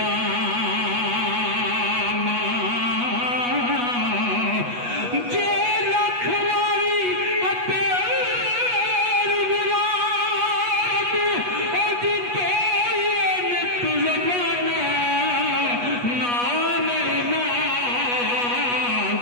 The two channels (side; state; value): left; late; 8.3 ms